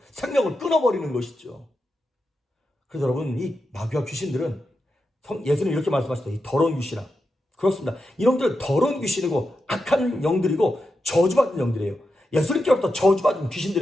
생명을 끊어버리는 것이죠. 그래서 여러분, 이 마귀와 귀신들은 예수님 이렇게 말씀하셨어요. 이 더러운 귀신아. 그렇습니다. 이놈들은 더러운 귀신이고 악한 영들이고 저주받은 영들이에요. 예수님께로부터 저주받은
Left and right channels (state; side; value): normal; both; correlation 0.88